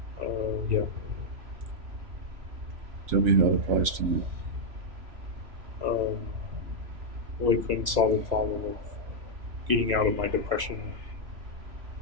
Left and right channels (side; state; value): left; late; 3.0 ms